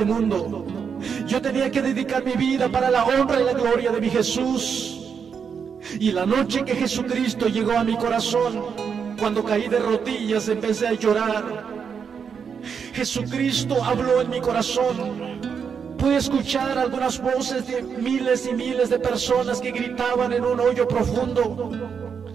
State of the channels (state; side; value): quieter; left; 6.6 dB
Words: mundo. Yo tenía que dedicar mi vida para la honra y la gloria de mi Jesús. Y la noche que Jesucristo llegó a mi corazón, cuando caí de rodillas empecé a llorar. Jesucristo habló en mi corazón. Pude escuchar algunas voces de miles y miles de personas que gritaban en un hoyo profundo,